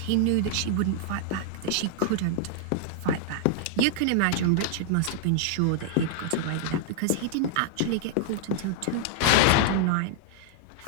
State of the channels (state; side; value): different; both; correlation -0.01